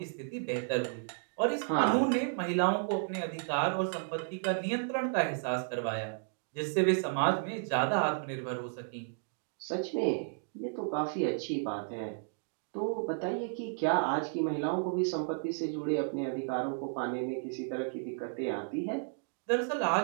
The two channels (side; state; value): left; silent; digital silence